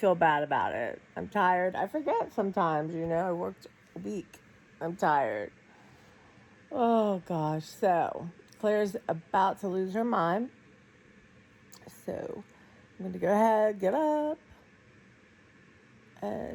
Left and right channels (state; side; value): identical; both; correlation 1.00